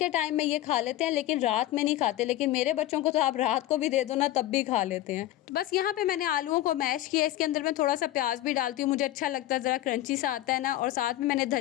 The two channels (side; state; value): right; quieter; 14.6 dB